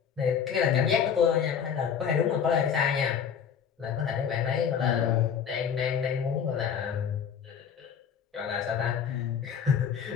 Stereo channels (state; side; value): quieter; right; 7.6 dB